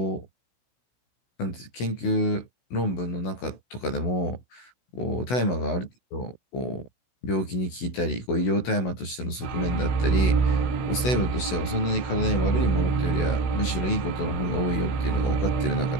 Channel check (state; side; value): late; right; 16 ms